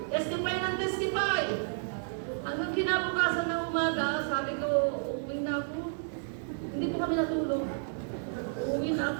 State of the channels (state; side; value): silent; left; digital silence